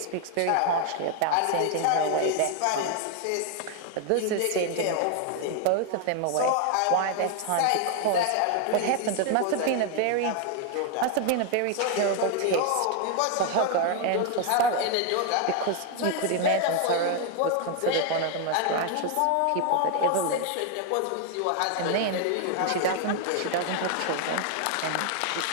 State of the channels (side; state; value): both; different; correlation 0.01